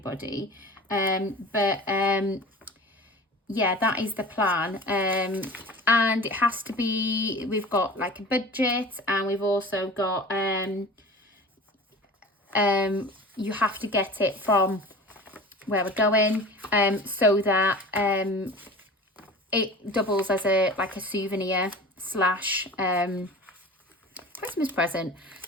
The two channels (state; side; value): normal; both; correlation 0.38